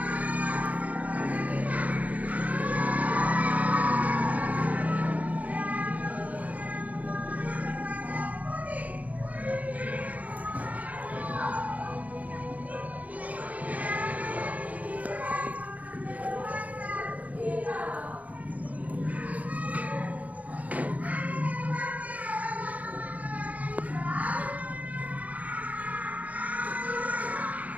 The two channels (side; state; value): left; late; 0.073 ms